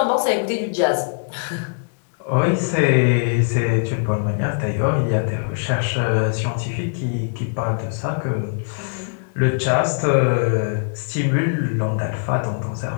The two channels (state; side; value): silent; right; 65 dB below the other